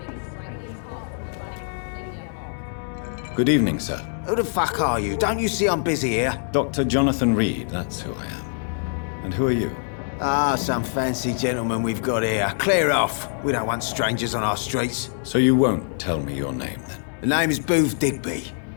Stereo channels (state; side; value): silent; right; 61 dB below the other